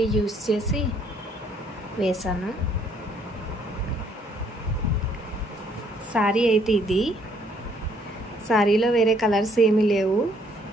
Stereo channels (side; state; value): both; normal; correlation 0.65